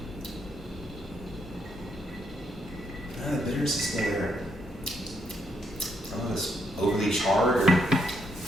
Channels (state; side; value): normal; both; correlation 0.76